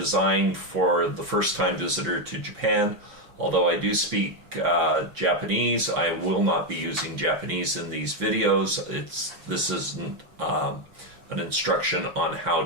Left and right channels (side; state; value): left; late; 5.9 ms